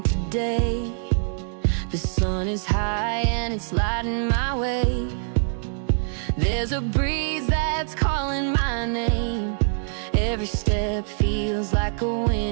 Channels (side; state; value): left; silent; 62 dB below the other